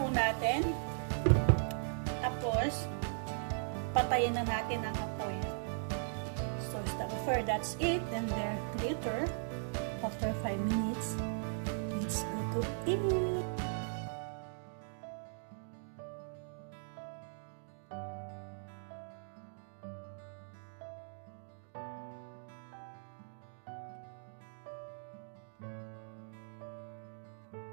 natin. Tapos, patayin na natin ang apoy. So, that's it. And then later, after 5 minutes, let's go to eat.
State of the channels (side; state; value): left; silent; digital silence